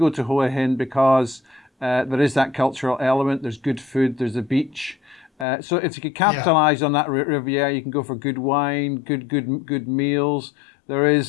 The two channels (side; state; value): right; drops out; at 5.5 s